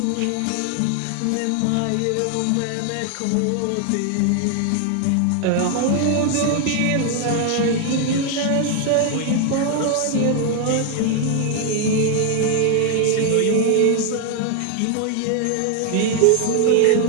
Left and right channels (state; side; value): different; both; correlation 0.00